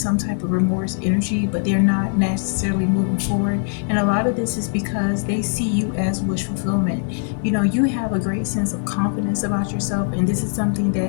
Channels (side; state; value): right; silent; 57 dB below the other